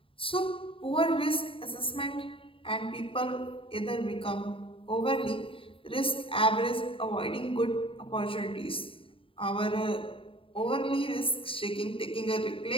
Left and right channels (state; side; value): late; right; 0.26 ms